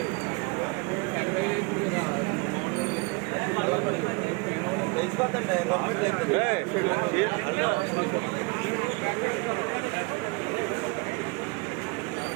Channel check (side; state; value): left; quieter; 28.4 dB